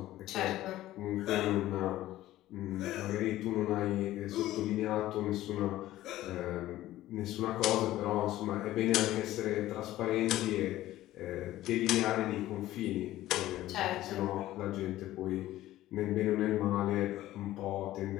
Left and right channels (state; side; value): quieter; right; 15.0 dB